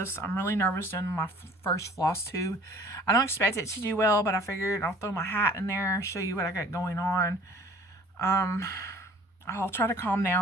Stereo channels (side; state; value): both; normal; correlation 0.51